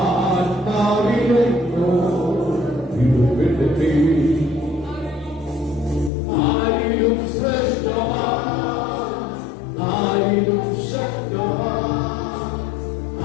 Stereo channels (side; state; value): right; drops out; at 6.1 s